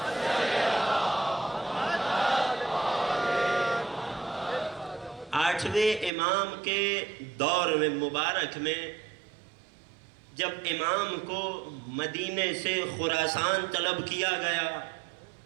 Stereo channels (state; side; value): drops out; left; at 6.1 s